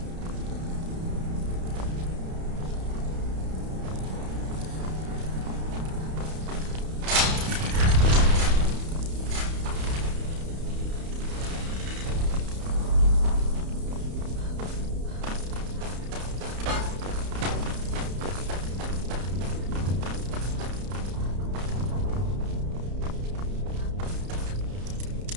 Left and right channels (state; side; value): late; left; 31 ms